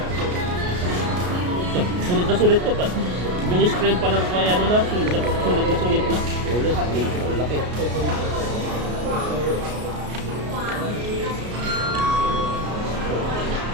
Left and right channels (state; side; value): late; left; 33 ms